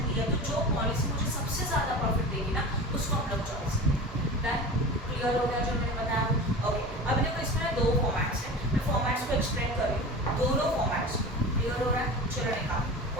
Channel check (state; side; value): normal; both; correlation 0.33